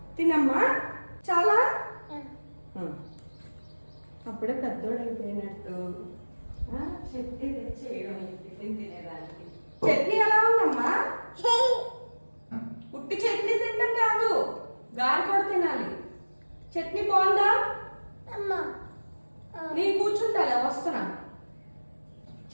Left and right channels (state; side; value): inverted; both; correlation -1.00